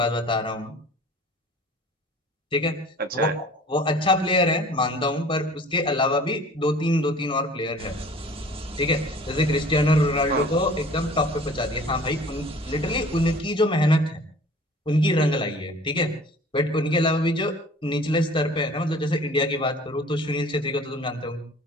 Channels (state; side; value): normal; both; correlation 0.47